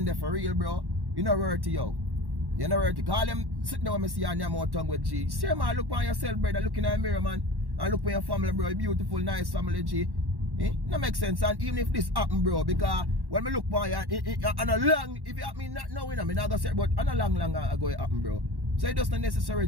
for real, bro, you know worth it, yo. You know worth it. Call them sitting down and see your Nyam out tongue with G. Say man, look on yourself, brother, look in the mirror, man. And look for your family, bro. Beautiful, nice family, G. No make sense. And even if this happen, bro, because when me look for you, and a long, if it happen not now, you know, me not gonna say, but on a long ago it happen, bro. So it just not necessary,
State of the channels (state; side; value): late; left; 1.1 ms